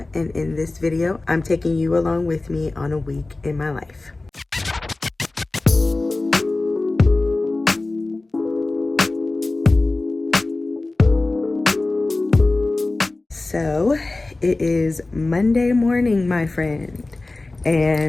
and in this video I'm taking you along with me on a week in my life. So it is Monday morning, my friend,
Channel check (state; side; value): quieter; right; 3.1 dB